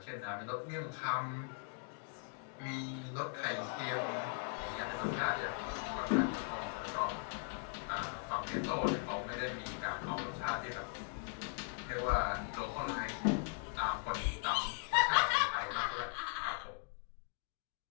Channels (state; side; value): silent; right; 52 dB below the other